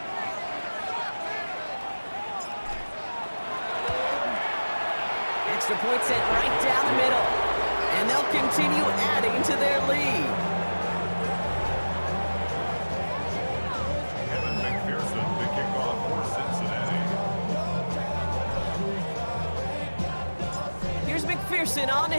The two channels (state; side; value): inverted; both; correlation -1.00